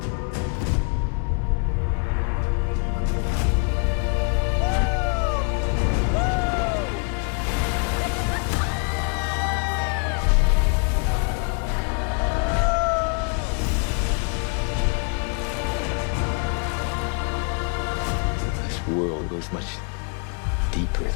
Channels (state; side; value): quieter; right; 39.2 dB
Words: This world goes much deeper